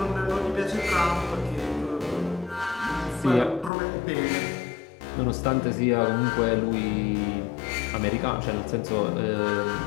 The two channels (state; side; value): drops out; right; at 3.7 s